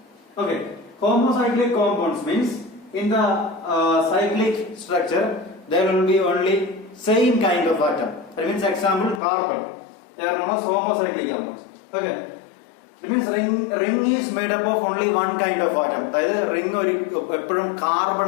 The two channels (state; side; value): drops out; right; at 9.2 s